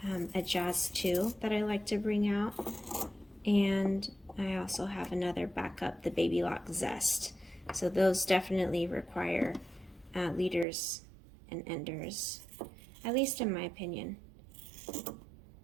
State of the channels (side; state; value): left; drops out; at 10.7 s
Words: a Jazz 2 that I like to bring out, and I also have another backup, the Baby Lock Zest. So those definitely require leaders and enders, at least in my opinion.